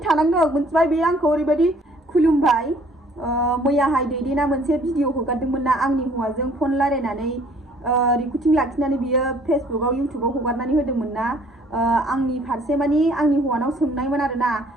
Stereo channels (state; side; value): normal; both; correlation 0.58